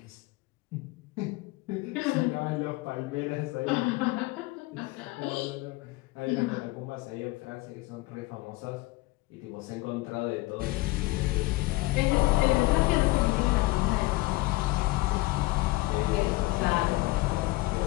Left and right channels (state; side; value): quieter; right; 21.1 dB